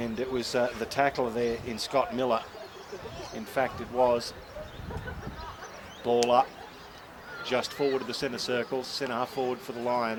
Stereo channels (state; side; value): identical; both; correlation 1.00